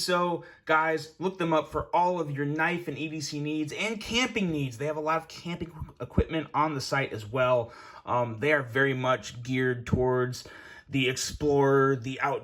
Guys, look them up for all of your knife and EDC needs and camping needs. They have a lot of camping equipment on the site as well. They are very much geared towards the explorer, the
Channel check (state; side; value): identical; both; correlation 1.00